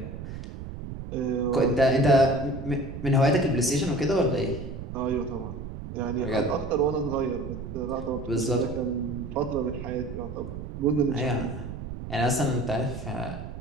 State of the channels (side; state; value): right; noise; rumble, 9 dB below the sound